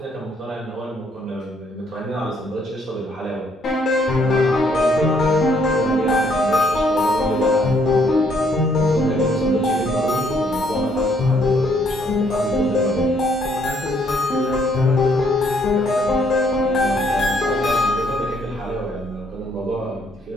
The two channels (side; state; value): both; normal; correlation 0.68